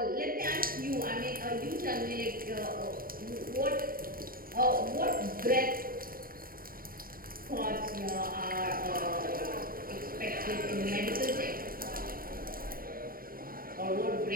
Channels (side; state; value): left; late; 0.42 ms